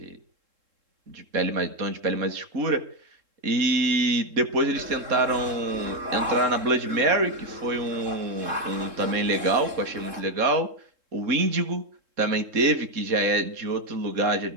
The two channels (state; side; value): late; left; 3.7 ms